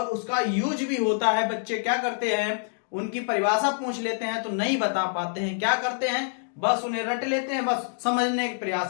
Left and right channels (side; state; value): right; silent; digital silence